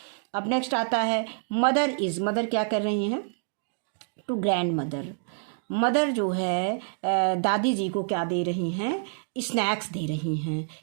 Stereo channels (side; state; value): left; silent; digital silence